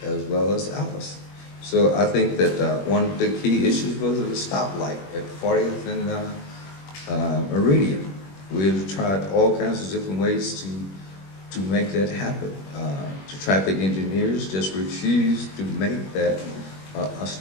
as well as Alice. So I think that one of the key issues was the stoplight at 40th and Meridian. We've tried all kinds of different ways to make that happen. The traffic engineers just refused to make that a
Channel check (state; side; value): late; right; 21 ms